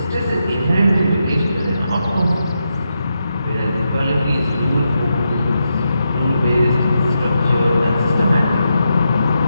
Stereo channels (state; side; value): inverted; both; correlation -0.85